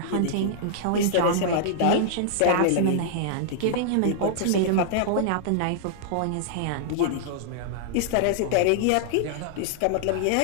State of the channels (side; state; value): both; different; correlation -0.01